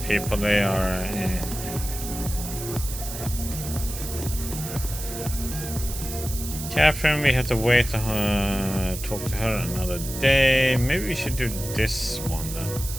people. They are. Catherine, we have to wait to talk to her another day. Maybe we should do this one then.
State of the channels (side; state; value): right; noise; hiss, 9 dB below the sound